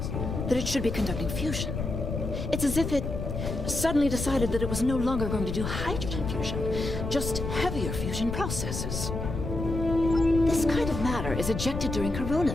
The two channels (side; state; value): left; noise; rumble, 4 dB below the sound